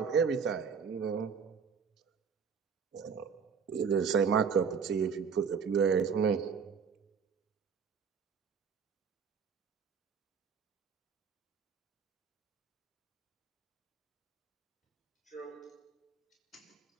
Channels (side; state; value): left; quieter; 6.3 dB